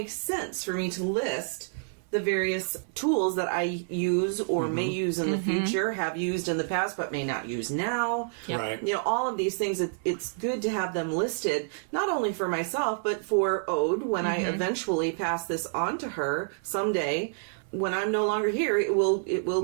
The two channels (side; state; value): left; silent; 59 dB below the other